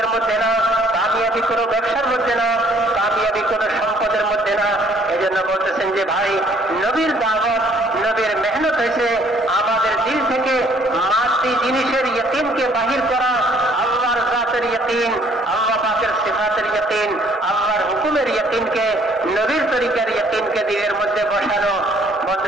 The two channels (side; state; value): both; normal; correlation 0.60